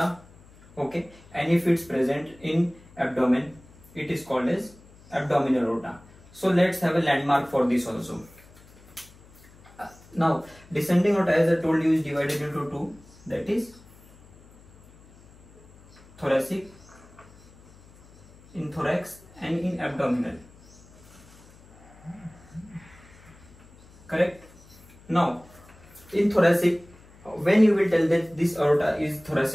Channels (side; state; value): left; noise; hum, 25 dB below the sound